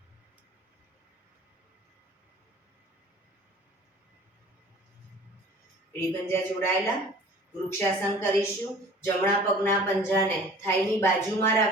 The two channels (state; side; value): normal; both; correlation 0.46